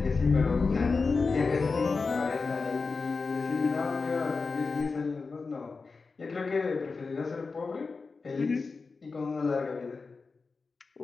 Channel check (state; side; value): quieter; right; 4.4 dB